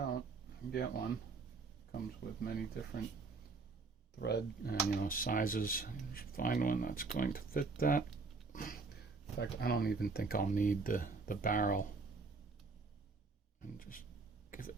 get one. Comes with many different thread and sizes. You should find one that's going to fit that. In fact, I don't even think I'll need the barrel. And just give it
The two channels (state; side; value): quieter; left; 4.2 dB